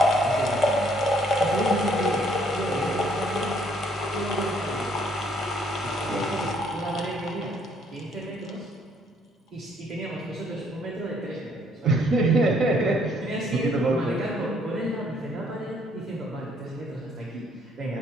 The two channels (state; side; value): normal; both; correlation 0.65